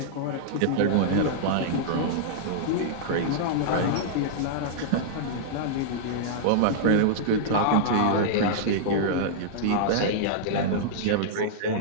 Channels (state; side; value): different; both; correlation -0.02